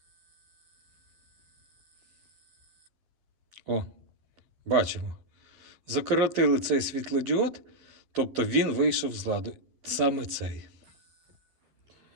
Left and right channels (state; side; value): late; left; 11 ms